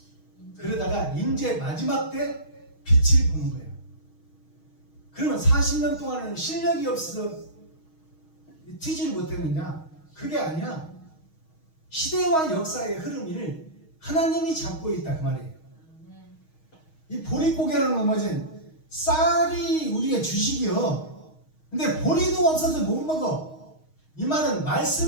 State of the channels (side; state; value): right; late; 6.4 ms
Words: 그러다가 이제 마지막 때 빛을 보는 거예요. 그러면 40년 동안은 실력이 없어서 튀지를 못했느냐? 그게 아니야. 시대와 역사의 흐름을 하나님이 잡고 있다 그 말이에요. 이 보릿고개를 넘어진 쌀이 우리의 주식이요. 근데 보리도 없어서 못 먹어. 이 말은